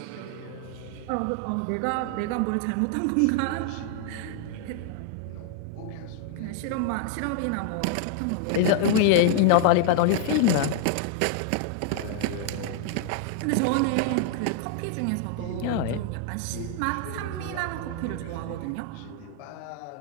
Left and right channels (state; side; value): different; both; correlation 0.00